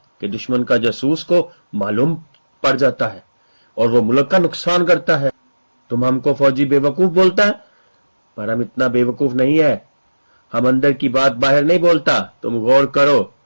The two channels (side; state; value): both; inverted; correlation -1.00